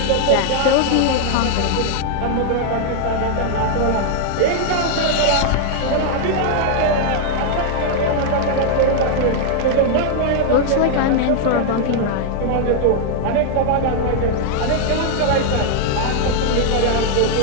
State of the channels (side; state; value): both; different; correlation 0.00